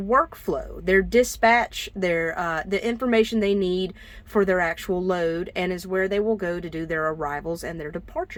their dispatch, the information they need for their actual load, and is where they will go to do their arrivals and their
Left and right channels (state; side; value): identical; both; correlation 1.00